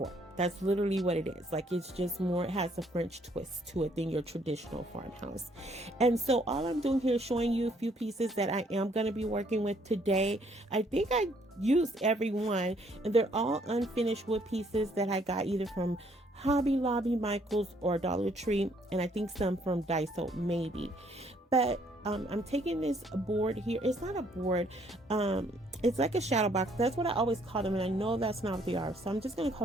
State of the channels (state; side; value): normal; both; correlation 0.66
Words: That's literally what it is. Like, it's just more, it has a French twist to it than your traditional farmhouse. And so all I'm doing here is showing you a few pieces that I am going to be working with today. I think I used every one, and they're all unfinished wood pieces that I got either from Hobby Lobby, Michael's, or Dollar Tree, and I think some from Daiso maybe. But I'm taking this board here. It's not a board. It's like a shadow box. That's what I always call them, and I know that's not what they are. So I'm just going to